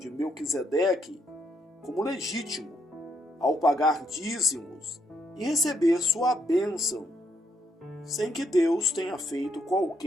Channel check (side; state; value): both; normal; correlation 0.75